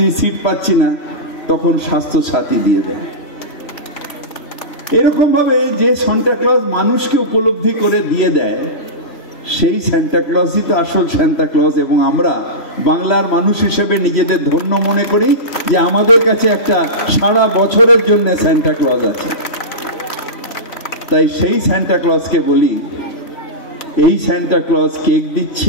সিট পাচ্ছি না, তখন স্বাস্থ্য সাথী দিয়ে দেয়। এরকম ভাবে যে সান্টা ক্লজ মানুষকে উপলব্ধি করে দিয়ে দেয়, সেই সান্টা ক্লজই তো আসল সান্টা ক্লজ। এবং আমরা বাংলার মানুষ হিসেবে নিজেদের ধন্য মনে করি যে আমাদের কাছে একটা সারা বছরের জন্য সান্টা ক্লজ আছে। তাই সেই সান্টা ক্লজকে বলি, এই সান্টা ক্লজ কেক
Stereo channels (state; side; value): late; right; 3.0 ms